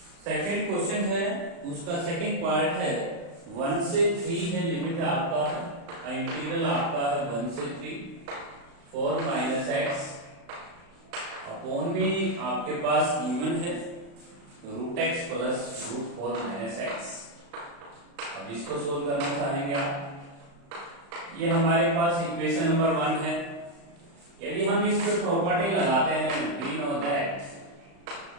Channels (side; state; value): left; late; 35 ms